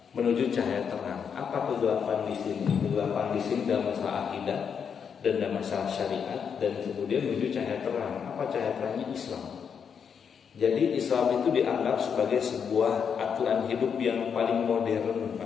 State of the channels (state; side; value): quieter; right; 7.0 dB